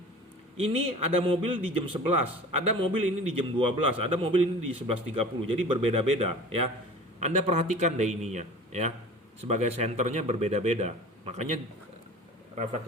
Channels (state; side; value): normal; both; correlation 0.40